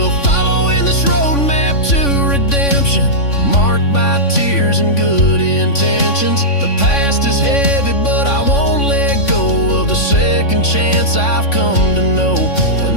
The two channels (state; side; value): late; right; 3.5 ms